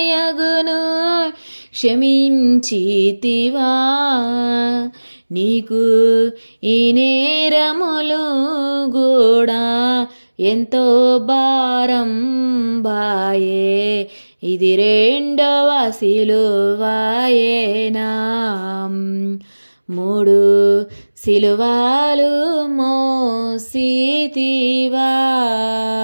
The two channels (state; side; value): inverted; both; correlation -1.00